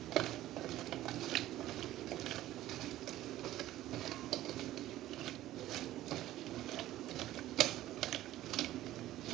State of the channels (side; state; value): left; quieter; 14.6 dB